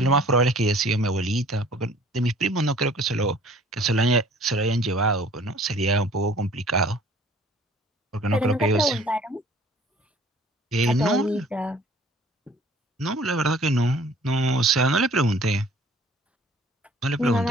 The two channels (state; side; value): normal; both; correlation 0.53